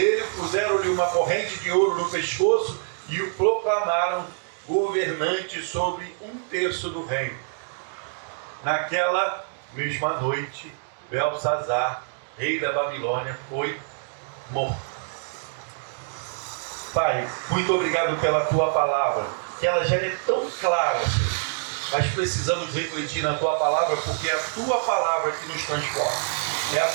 puseram-lhe uma corrente de ouro no pescoço e o proclamaram governante sobre 1/3 do reino. Naquela mesma noite, Belsazar, rei da Babilônia, foi morto. Pai, muito obrigado pela tua palavra, que ela já é tão clara, Senhor. Mas precisamos refletir na tua palavra, porque é a tua palavra que nos transforma. É a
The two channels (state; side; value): silent; left; digital silence